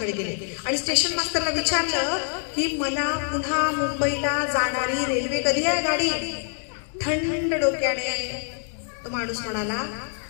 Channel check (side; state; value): right; silent; 57 dB below the other